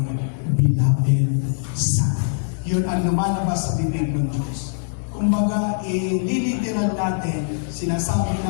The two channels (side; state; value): right; silent; digital silence